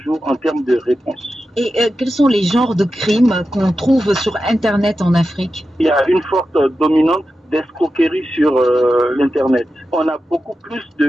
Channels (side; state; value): both; normal; correlation 0.91